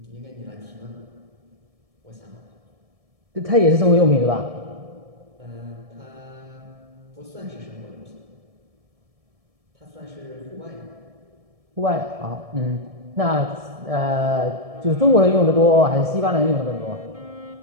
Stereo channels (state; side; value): late; left; 1.7 ms